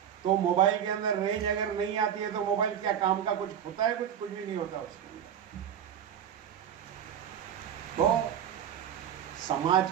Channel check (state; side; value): quieter; left; 9.1 dB